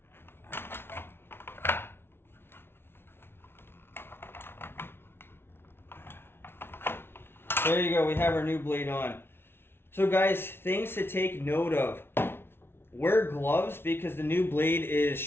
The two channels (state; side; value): late; right; 0.11 ms